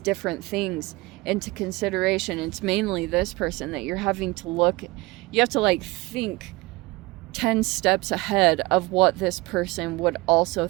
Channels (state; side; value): quieter; left; 21.9 dB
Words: different things into consideration. It's mainly this person that you're having to look, you have to like think 10 steps ahead of what this person would also